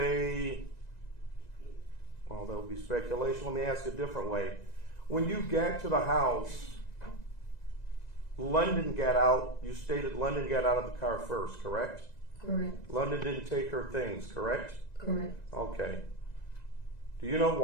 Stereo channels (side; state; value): right; late; 1.9 ms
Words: well, that would be speculation. Let me ask a different way. When you got to the house, London got out, you stated London got out of the car first, correct? Correct. London didn't take her things, correct? Correct. Okay. Do you know